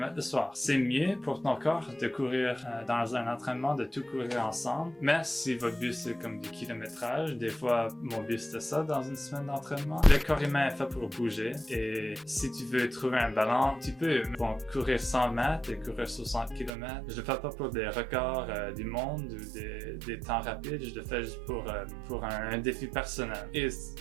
le soir. C'est mieux pour ton corps de courir dans un entraînement, de tout courir ensemble. Mais si votre but c'est comme du kilométrage, des fois mon but c'était ça dans une semaine d'entraînement. Le corps humain est fait pour bouger et si tu veux trouver un balance, tu peux courir 100 mètres et courir 60 km. Je le fais pas pour des records du monde ou des temps rapides, je le fais juste pour un défi personnel. Et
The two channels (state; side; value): drops out; left; at 16.7 s